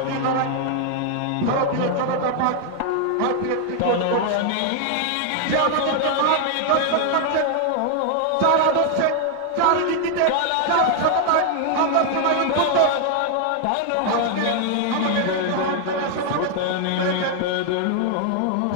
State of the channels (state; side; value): different; both; correlation 0.00